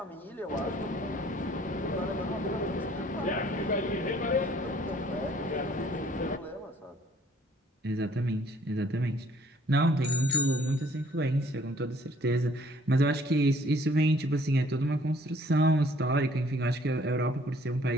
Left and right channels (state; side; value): normal; both; correlation 0.59